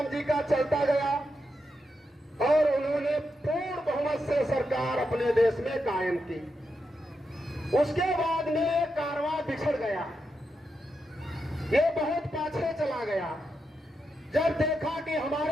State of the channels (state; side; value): normal; both; correlation 0.85